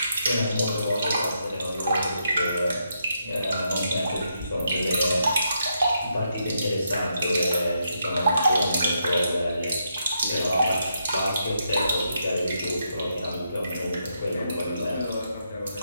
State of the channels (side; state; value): both; inverted; correlation -0.80